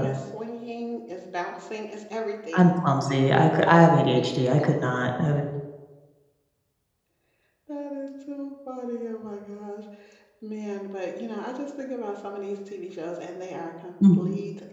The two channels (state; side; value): identical; both; correlation 1.00